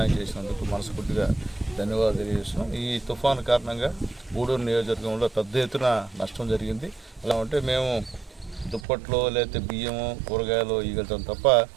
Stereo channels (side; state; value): left; drops out; at 8.8 s